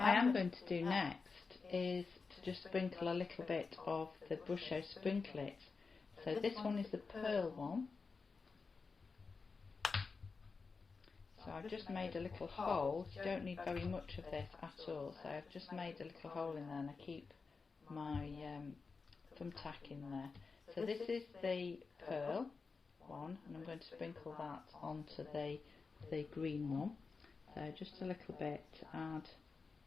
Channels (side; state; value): right; quieter; 4.6 dB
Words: am going to do next is to just sprinkle a little bit of the Brusho Sprinklet. So this one is the pearl one. So I've just made a little hole. You don't need very much of this at all. So I've just made a little hole in there and I keep my thumbtack in there. So this is the pearl one and I'm going to sprinkle that onto the green one. So just a little bit to add